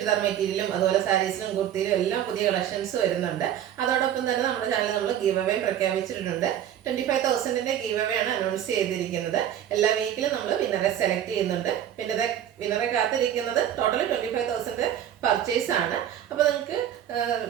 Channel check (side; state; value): left; quieter; 10.5 dB